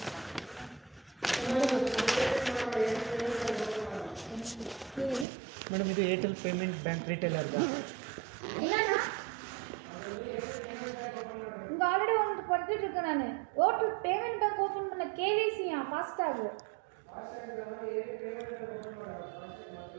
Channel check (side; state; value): left; drops out; at 5.2 s